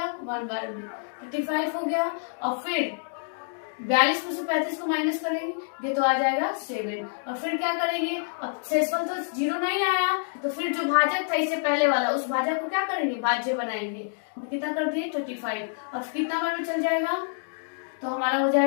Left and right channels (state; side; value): silent; right; digital silence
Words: 1 बार में। 35 हो गया। और फिर 42 में से 35 को माइनस करेंगे तो आ जाएगा 7। और फिर क्या करेंगे, अब शेषफल तो 0 नहीं आया, तो फिर जो भाजक था इससे पहले वाला, उस भाजक को क्या करेंगे, भाज्य बनाएंगे। तो कितना कर दिए, 35। अब कितना बार में चल जाएगा, तो हमारा हो